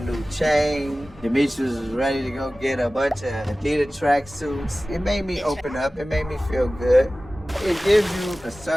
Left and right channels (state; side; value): normal; both; correlation 0.97